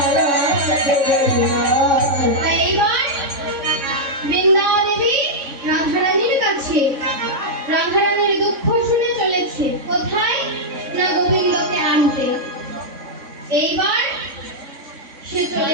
বৃন্দাবন দেবী রাধারানীর কাছে রাধারানীর দুঃখ শুনে চলেছে কোথায় না গোবিন্দকে আনতে। এইবার সে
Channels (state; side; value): late; left; 3.6 ms